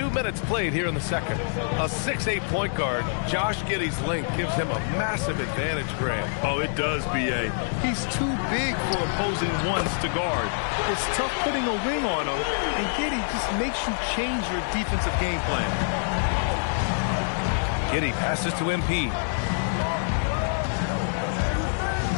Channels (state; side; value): silent; right; digital silence